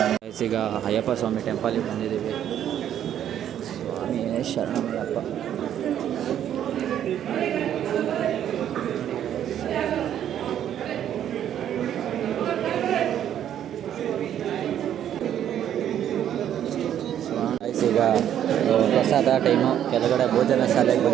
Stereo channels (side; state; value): left; quieter; 10.4 dB